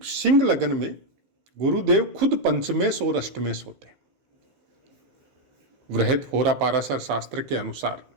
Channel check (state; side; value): late; left; 15 ms